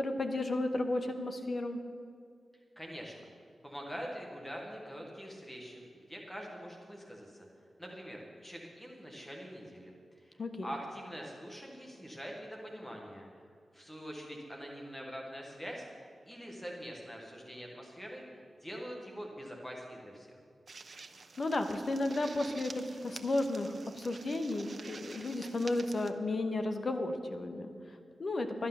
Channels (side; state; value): both; normal; correlation 0.92